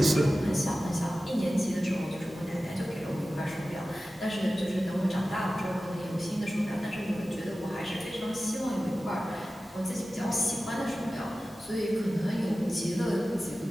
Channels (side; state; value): both; normal; correlation 0.95